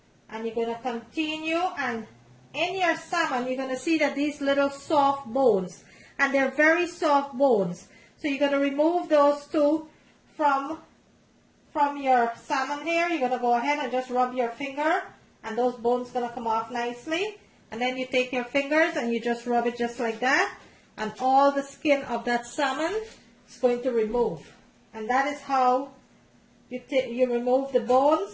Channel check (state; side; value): identical; both; correlation 1.00